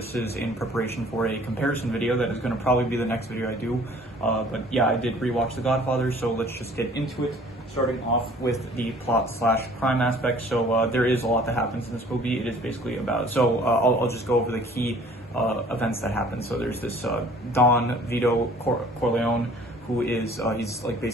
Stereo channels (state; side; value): normal; both; correlation 0.52